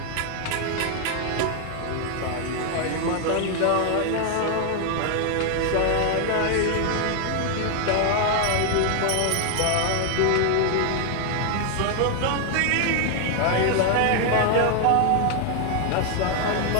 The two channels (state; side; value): different; both; correlation 0.00